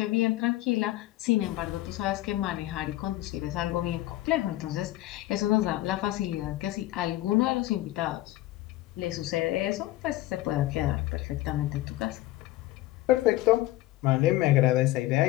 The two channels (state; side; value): quieter; right; 16.3 dB